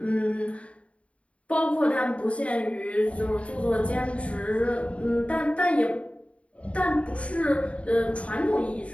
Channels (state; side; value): late; right; 0.063 ms